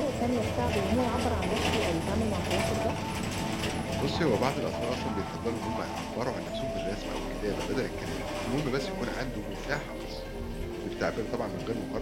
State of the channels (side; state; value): both; identical; correlation 1.00